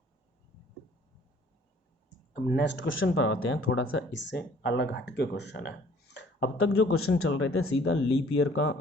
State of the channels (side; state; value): both; normal; correlation 0.56